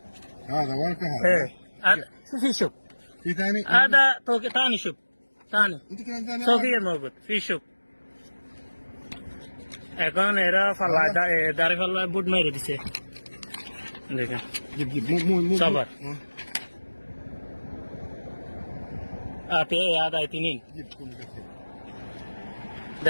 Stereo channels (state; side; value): inverted; both; correlation -1.00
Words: هذا ورقة ايه هذا هذا في شوف في ثاني هذا ثاني شوف ثاني انت كلام ثاني فوقيه موجود في شوف এখন এরা ফাল্লা দাঁড়ি ফাল্লা বুট মেরে দিছে। দেখেন جيب جيب مو صبر هذا اثنين جيب كل كثير